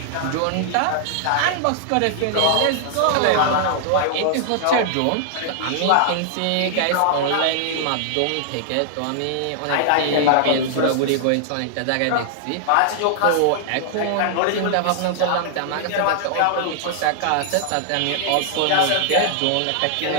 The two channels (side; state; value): both; different; correlation -0.01